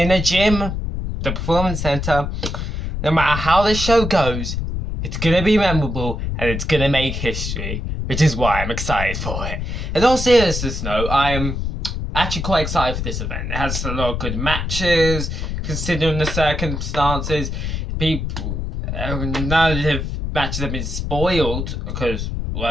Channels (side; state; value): left; noise; rumble, 3 dB below the sound